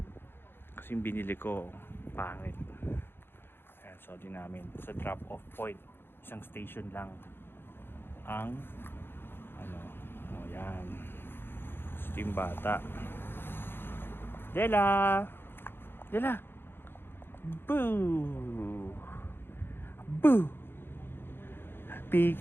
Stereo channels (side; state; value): right; late; 0.10 ms